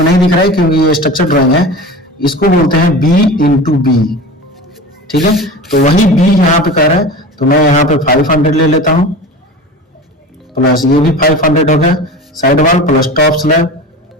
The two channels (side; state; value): both; normal; correlation 0.32